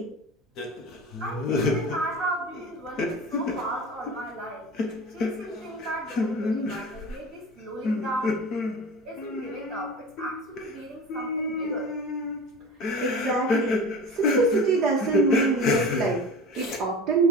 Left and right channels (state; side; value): normal; both; correlation 0.35